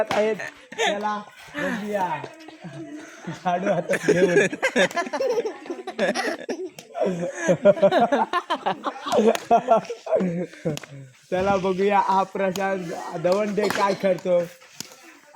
आहेत त्याला. बघूया झाडू हातात घेऊन. चला बघूया हा प्रशांत दवंडे काय करतो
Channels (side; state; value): both; identical; correlation 1.00